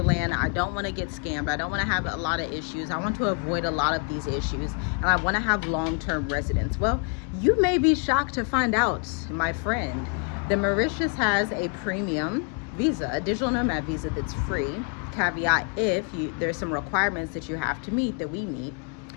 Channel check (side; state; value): right; quieter; 38.6 dB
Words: I don't want to get scammed. I don't want to have a lot of issues. I want to avoid a lot of these issues. And I want to have long-term residence. Well, you may be shocked to find out, my friend, that Mauritius has a premium visa, a digital nomad visa that's free. Caveat, there's some requirements that you have to meet that we meet.